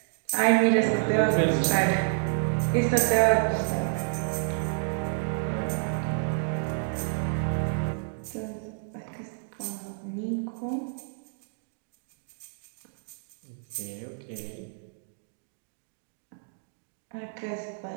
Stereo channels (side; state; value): left; silent; digital silence